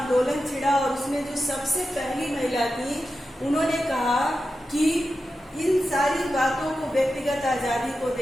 छिड़ा और उसमें जो सबसे पहली महिला थी, उन्होंने कहा कि इन सारी बातों को, व्यक्तिगत आजादी को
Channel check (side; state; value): both; normal; correlation 0.91